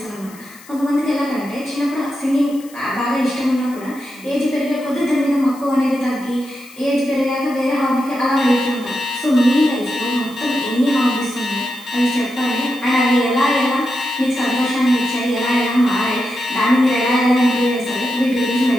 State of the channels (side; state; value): left; noise; hiss, 22 dB below the sound